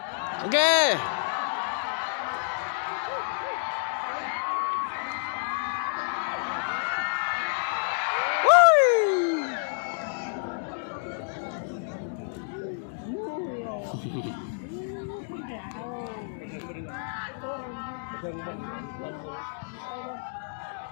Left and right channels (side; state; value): right; silent; digital silence